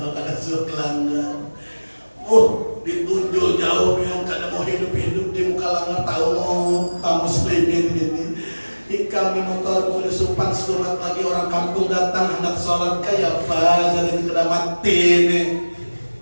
kada suruh langgar, ditunjuk jauh pian kada mau hidup di muka langgar. Tahu Pak muslimin ini. Kami motor boleh supan surat lagi orang kampung datang hendak sholat kayak apa jadi kena mati nih.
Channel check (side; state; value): both; inverted; correlation -1.00